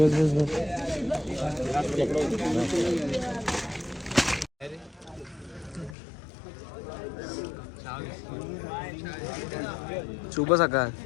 बस बस. शुभ सकाळ.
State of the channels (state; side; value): drops out; right; at 6.0 s